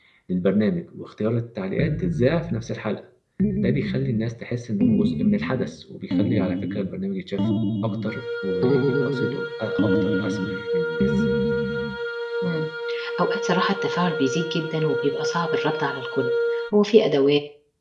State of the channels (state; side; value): identical; both; correlation 1.00